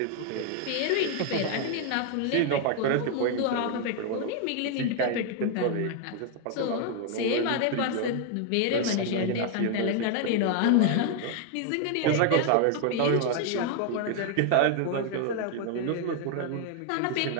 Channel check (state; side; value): different; both; correlation 0.00